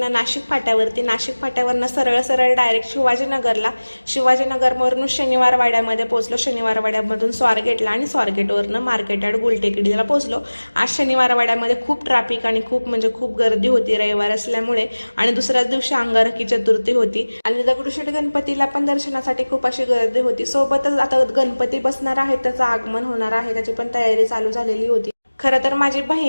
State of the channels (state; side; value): inverted; both; correlation -1.00